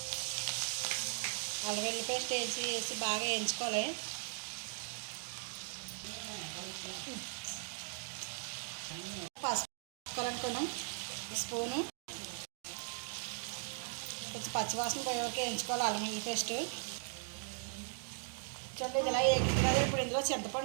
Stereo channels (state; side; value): silent; left; 52 dB below the other